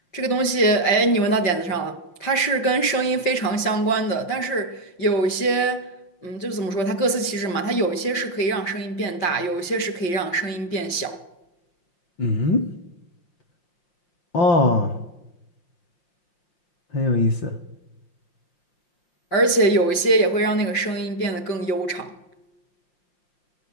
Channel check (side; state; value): right; late; 5.7 ms